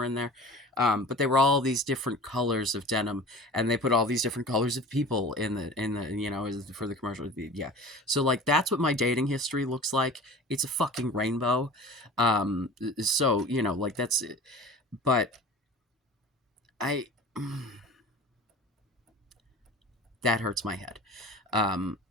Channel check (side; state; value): both; normal; correlation 0.40